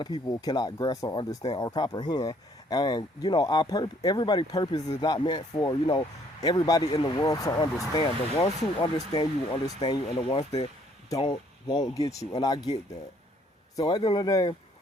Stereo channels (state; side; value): normal; both; correlation 0.63